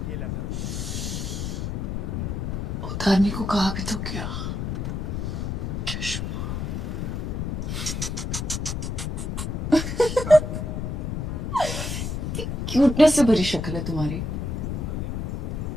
उतारने को कहा भी तो क्या। क्यूटनेस से भरी शक्ल है तुम्हारी।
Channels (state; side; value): noise; left; rumble, 2 dB below the sound